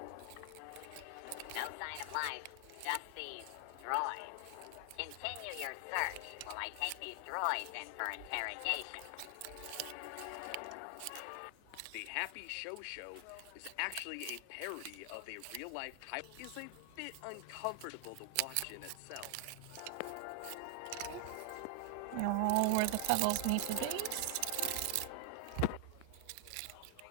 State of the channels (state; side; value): different; both; correlation 0.00